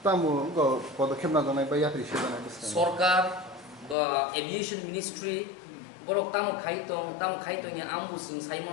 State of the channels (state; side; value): drops out; right; at 4.0 s